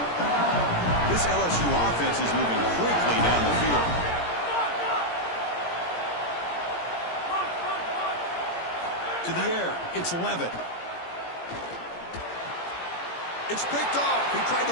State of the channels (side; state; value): right; late; 17 ms